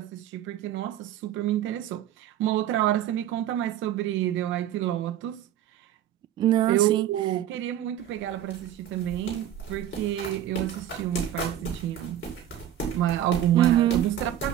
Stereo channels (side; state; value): left; quieter; 11.3 dB